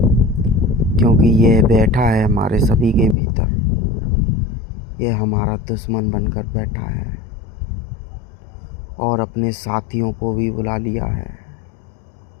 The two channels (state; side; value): drops out; right; at 3.2 s